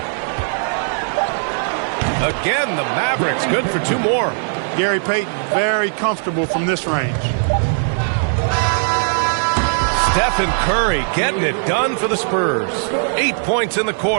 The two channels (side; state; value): left; silent; digital silence